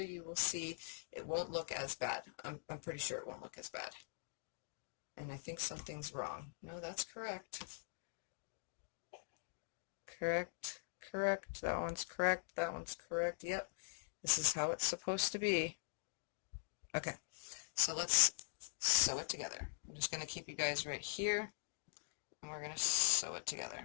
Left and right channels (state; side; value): silent; right; digital silence